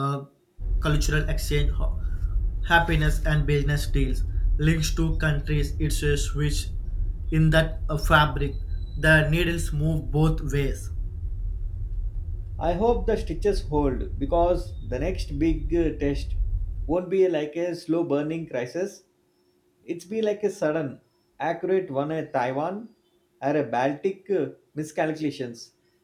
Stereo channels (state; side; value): identical; both; correlation 1.00